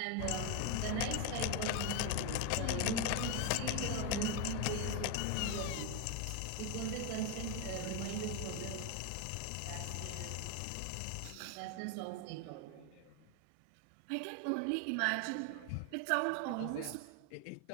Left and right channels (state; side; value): different; both; correlation 0.01